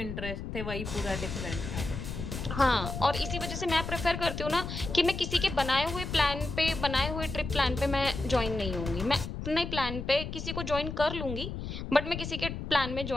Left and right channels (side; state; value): left; noise; rumble, 6 dB below the sound